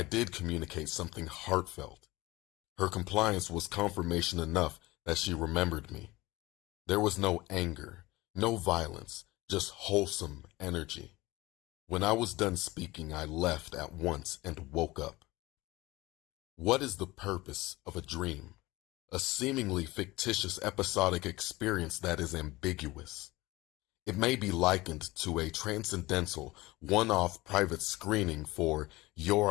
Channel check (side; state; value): right; quieter; 20.2 dB